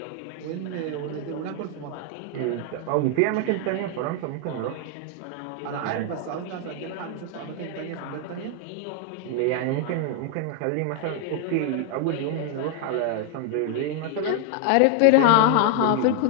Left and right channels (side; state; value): both; different; correlation 0.00